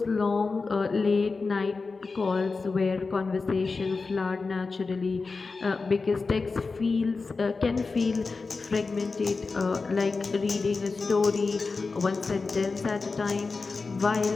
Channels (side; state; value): right; quieter; 4.2 dB